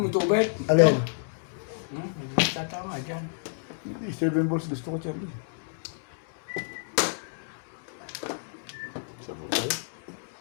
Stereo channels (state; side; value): silent; right; digital silence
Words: tubig. Alin? Tatama dyan. 7 balls gusto ko, Charlie. Sa po tayo.